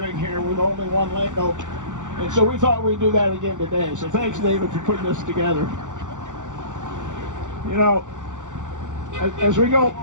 here with only one lane open. And so we thought we'd do that again today. So thanks, David, for putting this together. You know, as we go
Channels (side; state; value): left; late; 0.86 ms